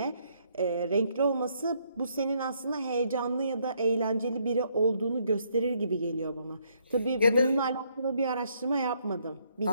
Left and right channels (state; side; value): inverted; both; correlation -0.71